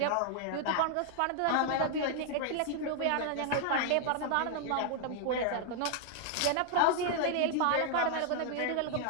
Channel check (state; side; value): different; both; correlation 0.00